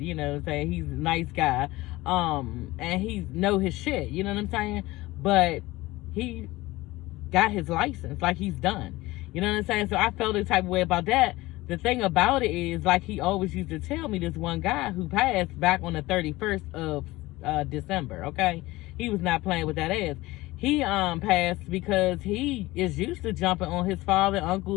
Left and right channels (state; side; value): quieter; right; 19.5 dB